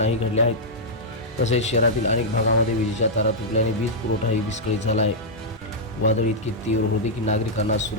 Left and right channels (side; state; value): both; normal; correlation -0.07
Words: घडल्या आहेत। तसेच शहरातील अनेक भागामध्ये विजेच्या तारा तुटल्याने वीज पुरवठाही विस्कळीत झाला आहे। वादळ इतकी तीव्र होते की नागरिकांना